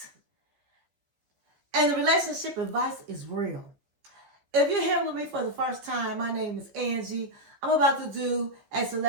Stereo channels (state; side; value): late; left; 15 ms